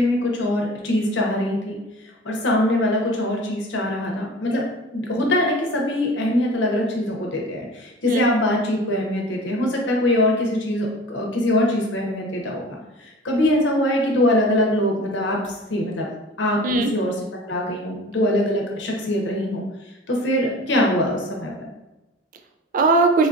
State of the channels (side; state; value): both; normal; correlation 0.40